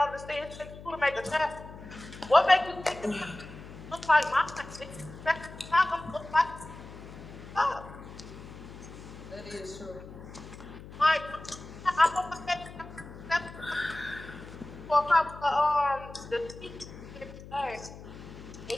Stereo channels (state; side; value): noise; left; hum, 15 dB below the sound